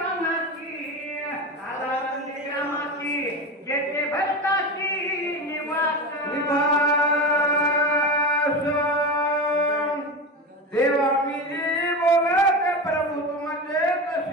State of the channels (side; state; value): both; normal; correlation 0.23